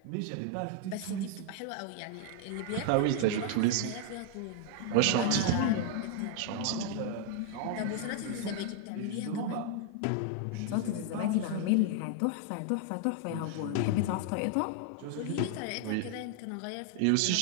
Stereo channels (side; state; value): both; different; correlation 0.00